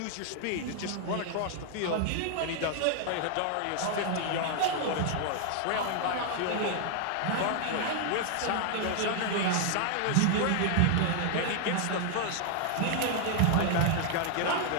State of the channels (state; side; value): different; both; correlation 0.00